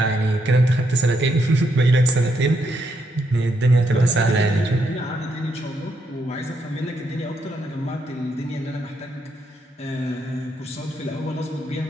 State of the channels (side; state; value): both; normal; correlation 0.78